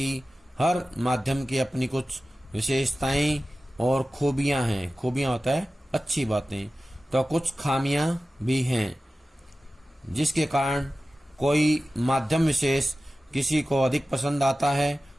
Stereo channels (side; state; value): both; normal; correlation 0.95